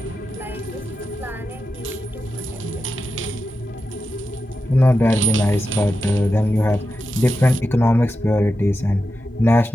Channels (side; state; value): both; normal; correlation 0.90